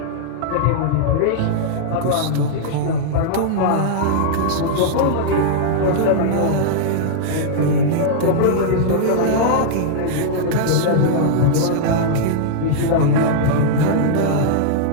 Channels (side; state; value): both; different; correlation -0.02